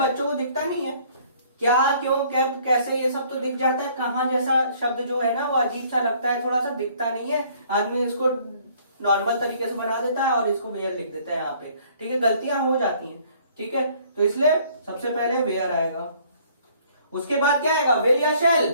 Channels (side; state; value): both; inverted; correlation -0.59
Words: को दिखता नहीं है, क्या क्यों कैसे ये सब तो दिख जाता है, कहां जैसा शब्द जो है ना वो अजीब सा लगता है, थोड़ा सा दिखता नहीं है, आदमी इसको नॉर्मल तरीके से बना देता है और इसको वेयर लिख देता है यहाँ पे, ठीक है, गलतियां हो जाती हैं, ठीक है। तो इसलिए सबसे पहले वेयर आएगा, उसके बाद क्या आएगा, विल या शैल,